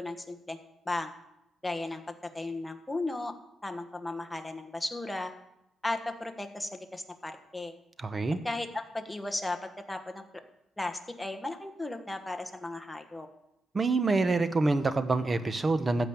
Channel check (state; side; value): normal; both; correlation 0.89